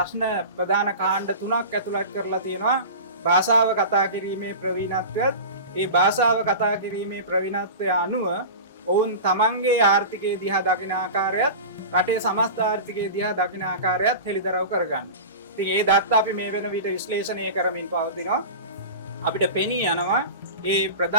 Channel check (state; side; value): inverted; both; correlation -0.31